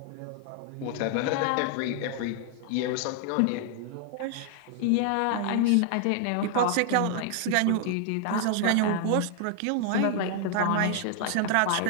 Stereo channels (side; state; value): both; different; correlation 0.00